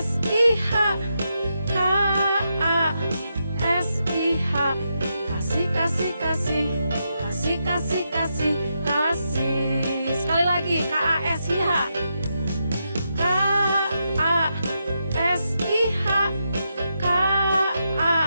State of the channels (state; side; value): inverted; both; correlation -0.84